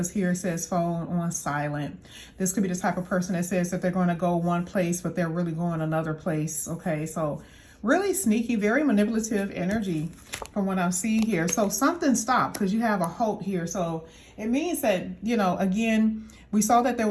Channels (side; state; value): both; identical; correlation 1.00